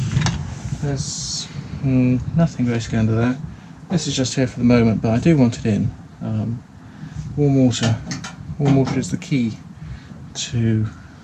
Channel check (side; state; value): both; identical; correlation 1.00